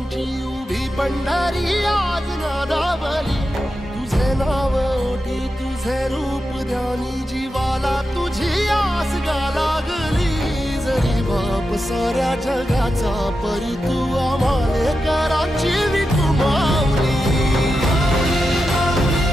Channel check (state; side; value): normal; both; correlation 0.89